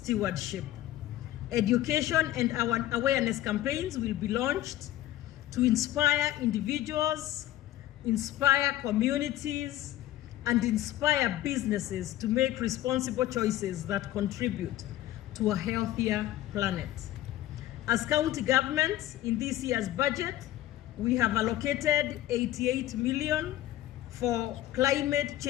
Education and our awareness campaigns will be launched to inspire individuals, inspire communities, and inspire businesses to make responsible choices that contribute to a healthier planet. As county government, in this year's budget, we have allocated 88 million for climate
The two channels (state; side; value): quieter; right; 14.0 dB